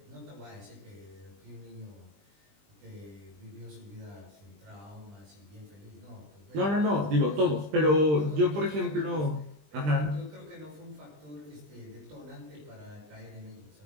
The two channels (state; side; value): late; left; 20 ms